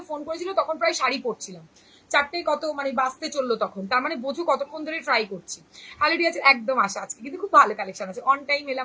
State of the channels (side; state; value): both; identical; correlation 1.00